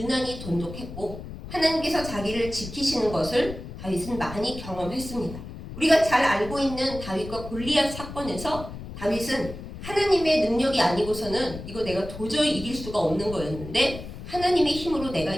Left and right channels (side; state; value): left; noise; rumble, 11 dB below the sound